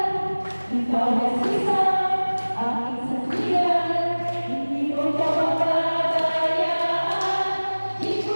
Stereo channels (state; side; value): inverted; both; correlation -1.00